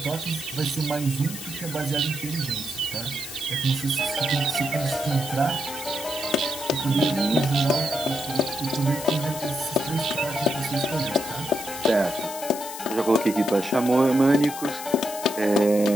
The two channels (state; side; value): noise; left; hiss, 10 dB below the sound